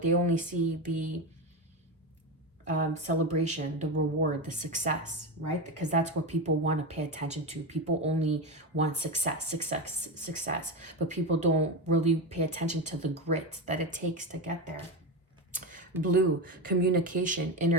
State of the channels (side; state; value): both; normal; correlation 0.16